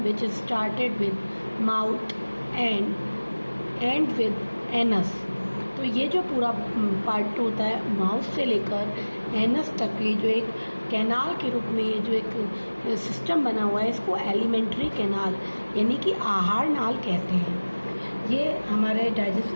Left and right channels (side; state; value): both; inverted; correlation -1.00